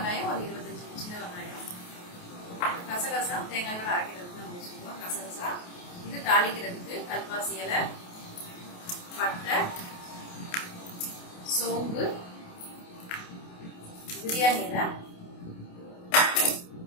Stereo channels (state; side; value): late; right; 28 ms